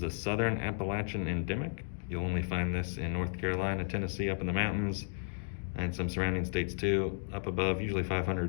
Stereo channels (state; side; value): silent; right; digital silence